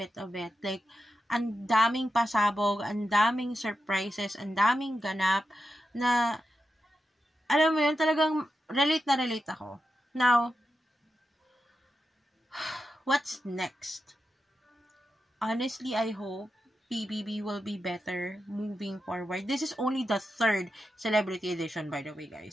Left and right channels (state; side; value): normal; both; correlation 0.89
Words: of it. Like, ang daming pasabog, ang daming surprises, ang daming ganap, na, alam mo yun, talagang relate na relate ako. Now, what's next? Honestly, I hope PBB will be better moving forward. This is only the 3rd celebrity edition, by the way,